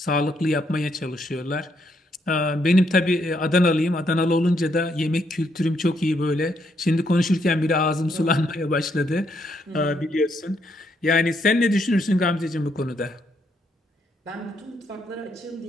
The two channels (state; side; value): normal; both; correlation 0.75